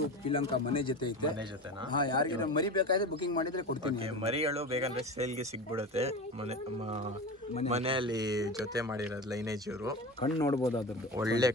ಪಿಲಂಕ ಮನೆ ಜೊತೆ ಐತೆ. ಮನೆ ಜೊತೆನಾ? ಹಾಂ, ಯಾರಿಗೆ ಮರಿ ಬೇಕಾದ್ರೆ ಬುಕಿಂಗ್ ಮಾಡಿದ್ರೆ ಕೊಡ್ತೀನಿ. ಮರಿಗಳು ಬೇಕಂದ್ರೆ ಸೇಲ್ಗೆ ಸಿಗ್ಬಿಡುತ್ತೆ. ಮನೆಯಲ್ಲಿ ಜೊತೆ ಮಾಡಿರೋದು ಲೈನೇಜ್. ಇವರು ಕಣ್ಣು ನೋಡ್ಬೋದು, ಅದ್ರದ್ದು ಒಳ್ಳೆ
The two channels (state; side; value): normal; both; correlation 0.28